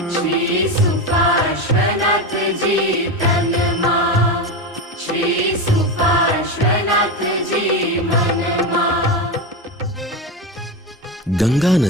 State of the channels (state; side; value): normal; both; correlation 0.17